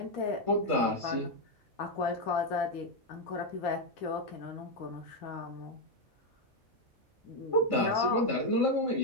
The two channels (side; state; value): both; normal; correlation 0.04